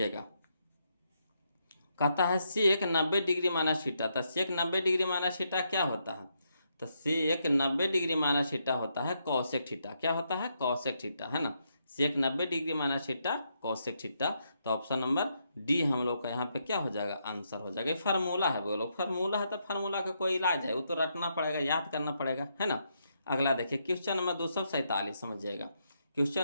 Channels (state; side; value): inverted; both; correlation -0.79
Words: कहता है सेक 90 डिग्री माइनस थीटा, तो सेक 90 डिग्री माइनस थीटा क्या होता है, तो सेक 90 डिग्री माइनस थीटा होता है कॉसेक थीटा, क्या होता है कॉसेक थीटा, है ना। सेक 90 degree minus theta cosec theta, तो ऑप्शन नंबर डी हम लोग का यहाँ पे क्या हो जाएगा आंसर हो जाएगा। फार्मूला है बोलो, फार्मूला है तो फार्मूला का कोई इलाज है, वो तो रटना पड़ेगा, याद करना पड़ेगा, है ना। अगला देखिए क्वेश्चन नंबर 247 समझिएगा। क्वेश्चन